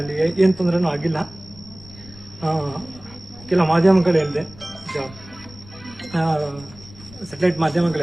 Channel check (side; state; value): left; noise; rumble, 20 dB below the sound